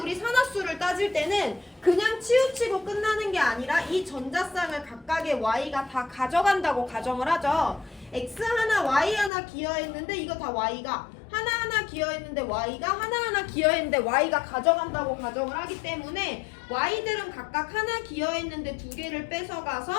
산화수를 따질 때는 그냥 치우치고 끝나는 게 아니라 이 전자쌍을 각각의 Y가 다 가져간다고 가정을 하죠. X 하나 Y 하나 기여했는데 이거 다 Y가 하나하나 기여했는데 Y가 하나하나 기여했는데 Y가 가져간다고 가정을 하기 때문에 Y들은 각각 하나 기여했는데 2개를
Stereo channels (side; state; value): right; drops out; at 9.3 s